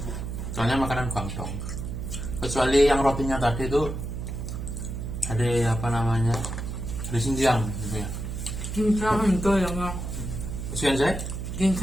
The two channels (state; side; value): noise; right; hum, 5 dB below the sound